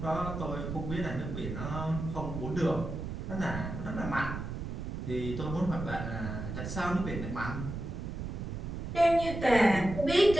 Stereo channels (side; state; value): right; noise; rumble, 6 dB below the sound